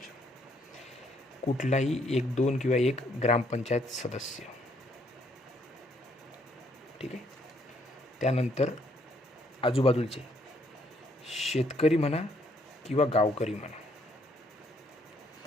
कुठलाही 1, 2 किंवा 1 ग्रामपंचायत सदस्य. ठीक आहे. त्यानंतर आजूबाजूचे शेतकरी म्हणा किंवा गावकरी म्हणा,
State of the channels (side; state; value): both; normal; correlation 0.68